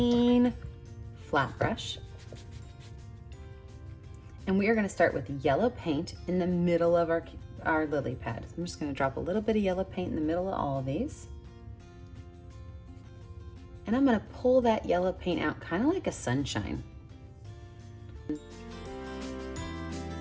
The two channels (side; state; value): both; identical; correlation 1.00